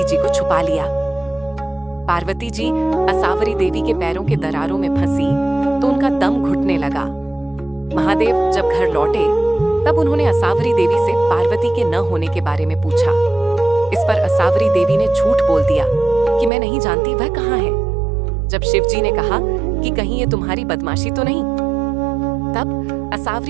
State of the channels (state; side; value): drops out; left; at 16.5 s